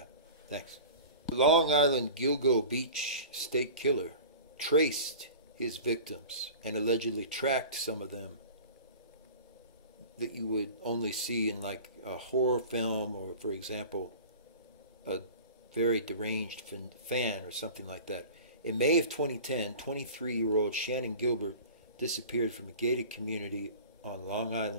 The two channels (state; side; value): inverted; both; correlation -0.38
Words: Thanks. The Long Island Gilgo Beach state killer traced his victims and allegedly tracked some of them that you would only see in like a horror film, or for example a very deranged fan or something like that. In May of 2010, 23-year-old Shannon Gilbert disappeared from a gated community on Long